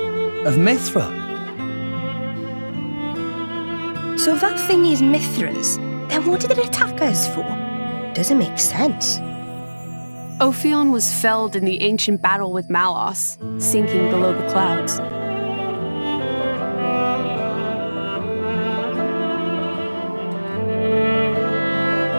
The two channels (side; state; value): both; inverted; correlation -1.00